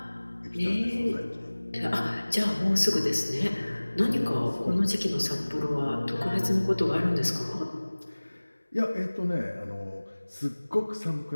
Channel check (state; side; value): inverted; both; correlation -1.00